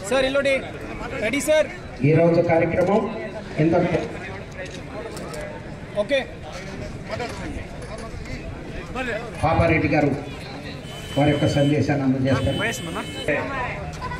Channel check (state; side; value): identical; both; correlation 1.00